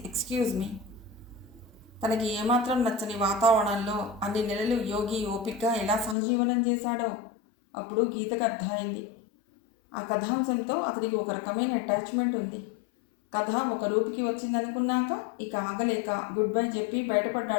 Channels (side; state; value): right; drops out; at 6.2 s